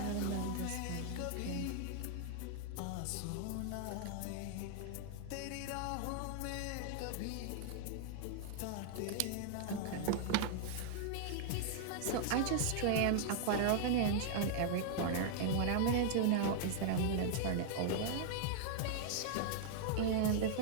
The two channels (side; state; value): both; different; correlation -0.01